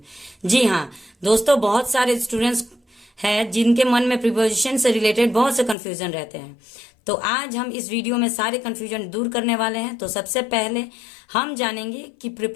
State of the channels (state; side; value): drops out; right; at 5.8 s